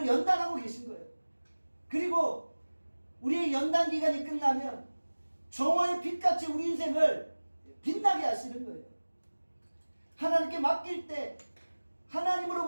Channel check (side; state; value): both; inverted; correlation -1.00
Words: 연단하고 계신 거예요. 그리고 우리의 연단 기간이 끝나면 정오의 빛같이 우리 인생을 빛나게 하시는 거예요. 하나님께 맡길 때